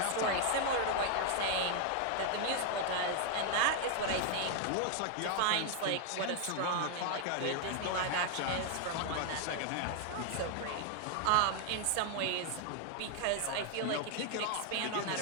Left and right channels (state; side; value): different; both; correlation 0.00